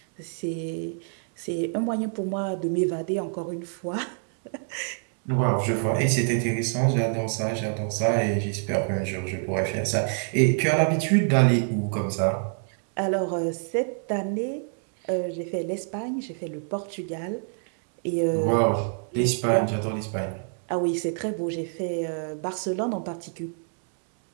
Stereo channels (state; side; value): silent; left; 57 dB below the other